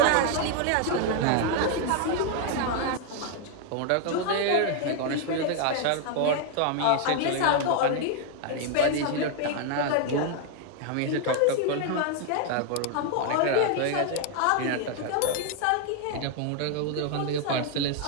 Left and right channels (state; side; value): different; both; correlation 0.00